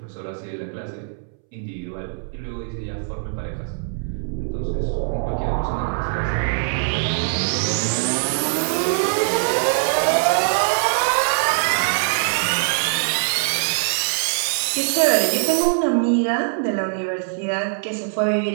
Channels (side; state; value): left; silent; 64 dB below the other